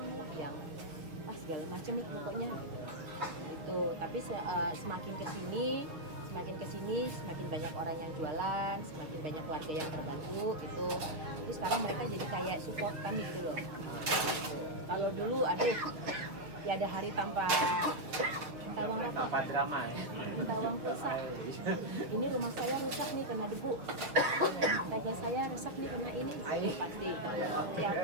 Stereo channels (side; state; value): left; late; 6.2 ms